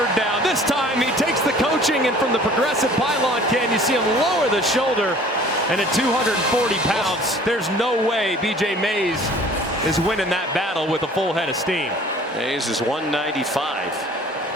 down. This time he takes the coaching, and from the progressive pylon can you see him lower the shoulder, and at 240 pounds, there's no way B.J. Mays is winning that battle with a full head of steam. Mays is 195.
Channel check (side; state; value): both; normal; correlation 0.50